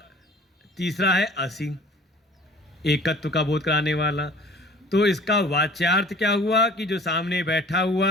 तीसरा है असि, एकत्व का बोध कराने वाला। तो इसका वाच्यार्थ क्या हुआ कि जो सामने बैठा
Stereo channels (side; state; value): both; normal; correlation 0.47